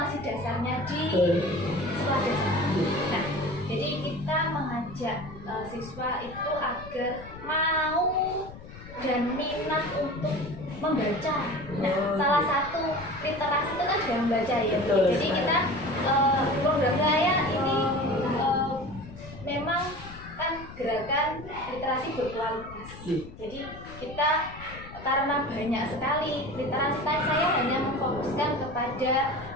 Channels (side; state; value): left; noise; rumble, 15 dB below the sound